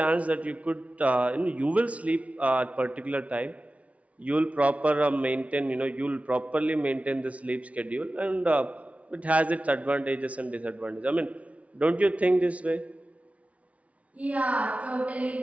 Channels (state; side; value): late; left; 0.065 ms